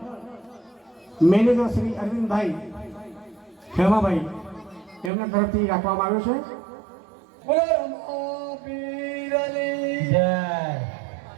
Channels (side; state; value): left; drops out; at 5.1 s